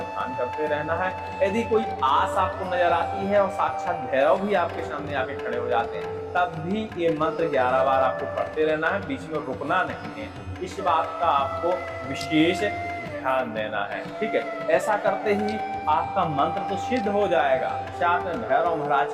ध्यान करते रहना है। यदि कोई आस आपको नजर आती है और साक्षात भैरव भी आपके सामने आके खड़े हो जाते हैं, तब भी ये मंत्र 11 बार आपको पढ़ते रहना है, बीच में रुकना नहीं है। इस बात का आपको विशेष ध्यान देना है। ठीक है, ऐसा करते ही आपका मंत्र तो सिद्ध हो जाएगा, साथ में भैरव महाराज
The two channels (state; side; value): identical; both; correlation 1.00